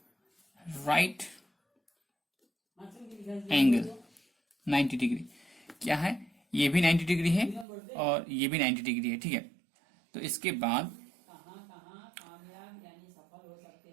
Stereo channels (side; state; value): left; drops out; at 7.7 s